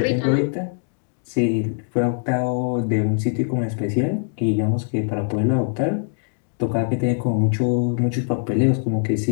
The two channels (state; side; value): silent; right; 61 dB below the other